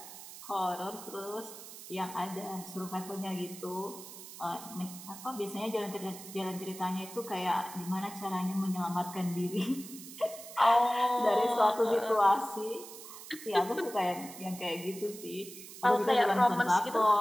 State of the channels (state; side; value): noise; right; hiss, 14 dB below the sound